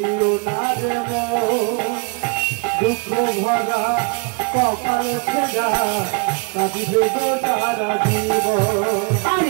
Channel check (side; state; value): left; quieter; 32.5 dB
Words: না রে মন, দুঃখ ভরা কপাল ছেড়া কাঁদিবে গো সারা জীবন।